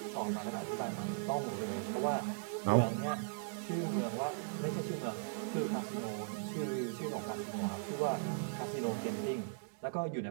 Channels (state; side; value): silent; left; digital silence